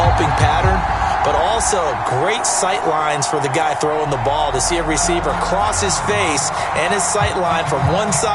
pattern, but also great sight lines for the guy throwing the ball to see a receiver cross his face and his sight line from one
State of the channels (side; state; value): both; identical; correlation 1.00